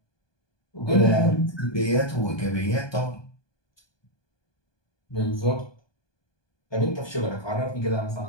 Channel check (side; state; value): right; late; 1.2 ms